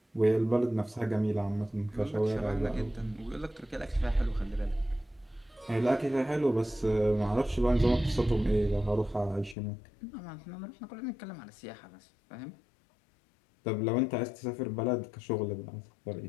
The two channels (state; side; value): drops out; right; at 9.6 s